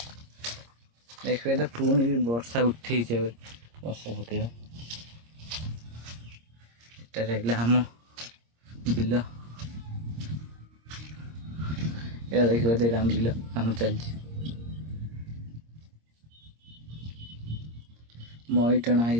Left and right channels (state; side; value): late; left; 26 ms